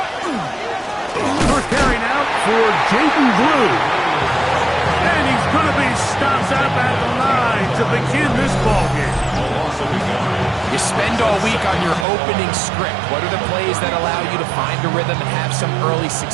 First carry now for Jaden Blue. And he's going to be stopped up at the line to begin this ballgame. You spend all week on your opening script. What are the plays that allow you to find a rhythm and have some early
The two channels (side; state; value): left; drops out; at 12.1 s